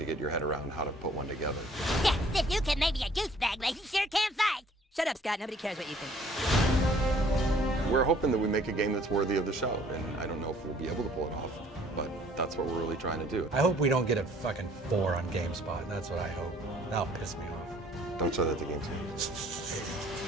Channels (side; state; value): both; normal; correlation 0.57